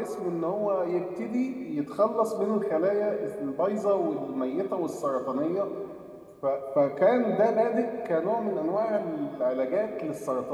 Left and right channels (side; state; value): both; identical; correlation 1.00